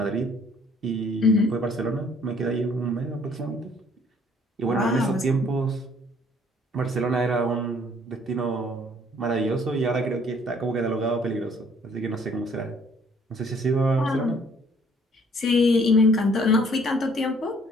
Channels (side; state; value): both; normal; correlation 0.60